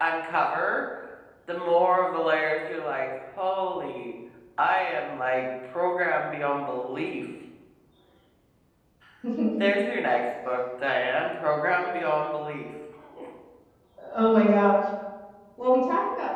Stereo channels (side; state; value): both; identical; correlation 1.00